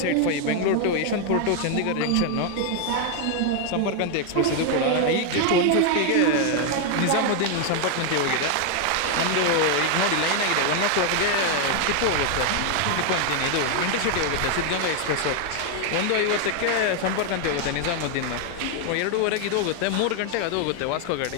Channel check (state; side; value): different; both; correlation 0.01